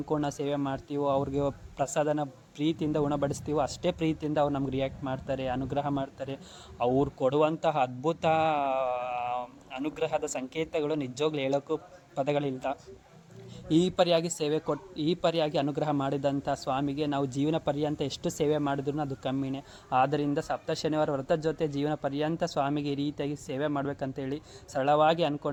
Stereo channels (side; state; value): both; identical; correlation 1.00